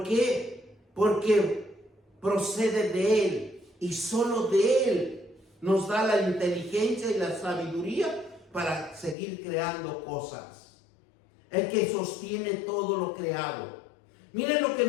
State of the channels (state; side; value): drops out; right; at 9.2 s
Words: qué? Porque procede de Él y solo de Él nos da la inteligencia y la sabiduría para seguir creando cosas. El que sostiene todo lo creado. Miren lo que